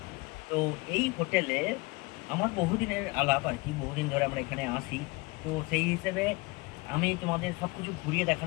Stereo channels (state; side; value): quieter; right; 25.0 dB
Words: তো এই হোটেলে আমার বহুদিনের আলাপ আর কি, বহুদিন ধরে আমরা এখানে আসি। তো সেই হিসেবে আমি তোমাদের সব কিছু ঘুরিয়ে